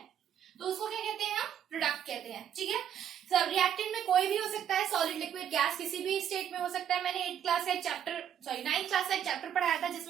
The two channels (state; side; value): quieter; left; 9.5 dB